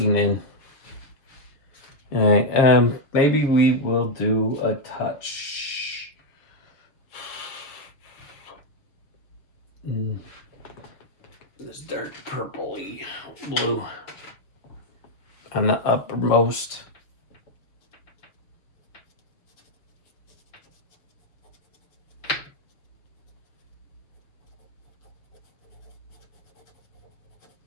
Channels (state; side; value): late; right; 6.8 ms